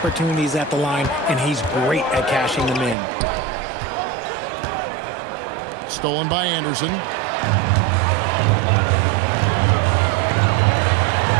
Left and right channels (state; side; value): drops out; left; at 3.0 s